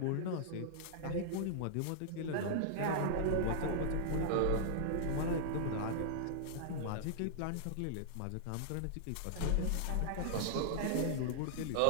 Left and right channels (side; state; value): both; different; correlation -0.02